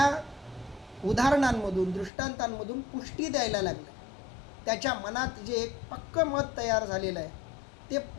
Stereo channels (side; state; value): right; drops out; at 2.1 s